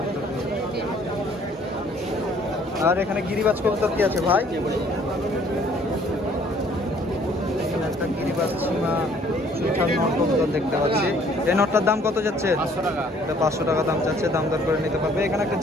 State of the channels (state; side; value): normal; both; correlation 0.59